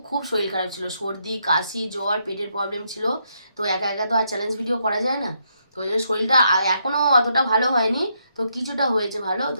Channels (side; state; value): both; inverted; correlation -0.77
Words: খুব শরীর খারাপ ছিল, সর্দি কাশি জ্বর পেটের প্রবলেম ছিল। তো একা একা তো আর চ্যালেঞ্জ ভিডিও করা যায় না, তো ওই জন্য শরীরটা এখনও অতটা ভালো হয়নি, তো কিছুটা হয়েছে ভালো, তো